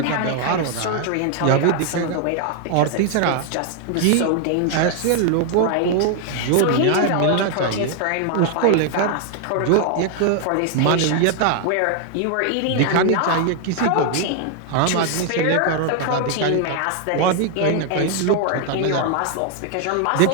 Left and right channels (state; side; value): different; both; correlation 0.00